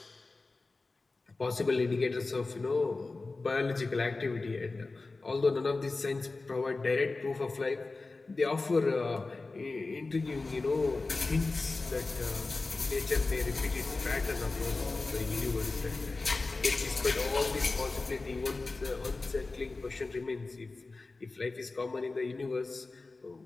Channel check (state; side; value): quieter; right; 3.6 dB